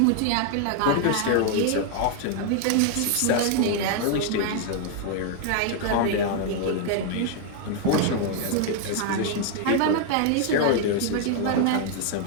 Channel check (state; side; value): different; both; correlation 0.00